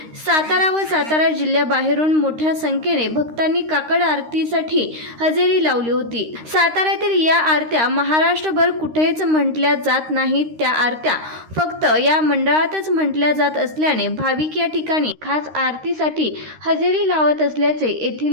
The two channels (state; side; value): late; left; 13 ms